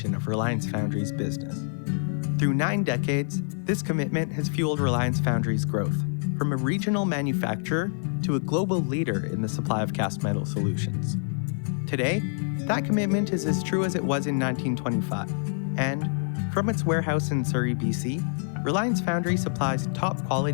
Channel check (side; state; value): right; silent; digital silence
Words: of Reliance Foundry's business. Through 9 decades, this commitment has fueled Reliance Foundry's growth, from a regional manufacturer to a global leader in the supply of cast metal solutions. Today, that commitment is as true as it was in 1925, and from its warehouse in Surrey, BC, Reliance Foundry supplies top